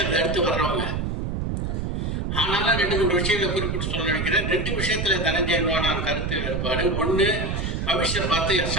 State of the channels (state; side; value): noise; right; rumble, 2 dB below the sound